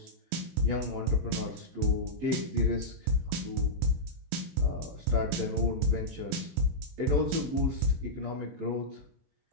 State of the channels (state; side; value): late; left; 23 ms